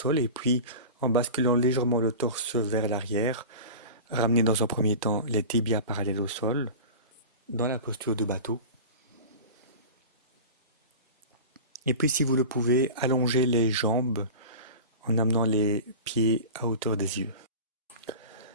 et puis, en basculant légèrement le torse vers l'arrière, ramenez dans un premier temps les tibias parallèles au sol, dans la posture du bateau. Et puis, si vous le pouvez, allongez les jambes en amenant les pieds à hauteur des yeux.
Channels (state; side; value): inverted; both; correlation -0.32